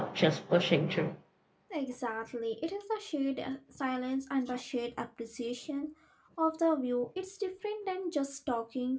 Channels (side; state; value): both; identical; correlation 1.00